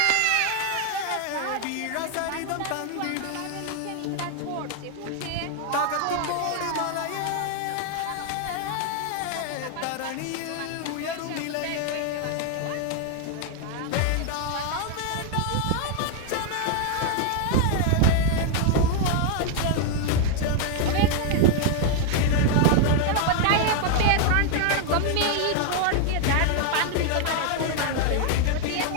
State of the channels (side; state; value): both; different; correlation 0.00